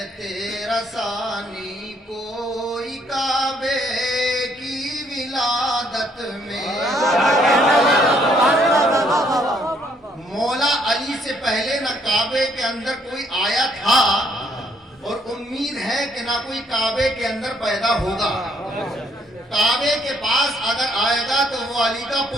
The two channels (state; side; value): normal; both; correlation 0.67